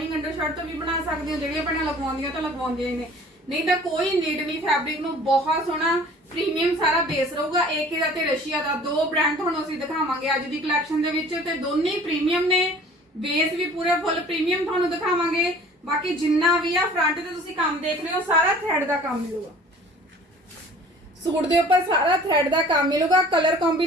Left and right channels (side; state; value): both; normal; correlation 0.48